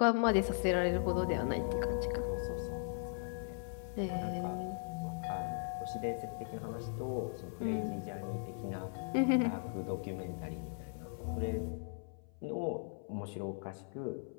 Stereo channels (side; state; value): right; silent; 52 dB below the other